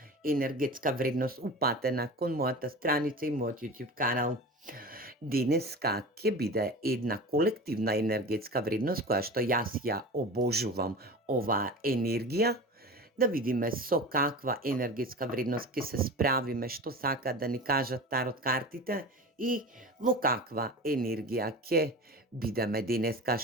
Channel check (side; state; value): both; normal; correlation 0.32